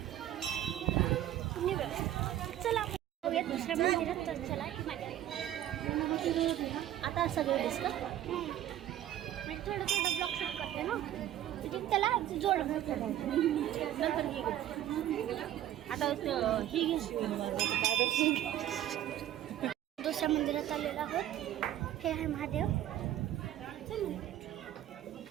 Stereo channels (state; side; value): quieter; left; 12.4 dB